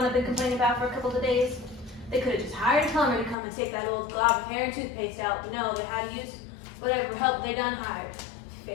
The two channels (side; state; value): right; drops out; at 3.4 s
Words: I've been complaining about for a couple of days? They could have just hired a plumber to come and take that old glob of hair and toothpaste out, but no, they had to use whatever help they done hired.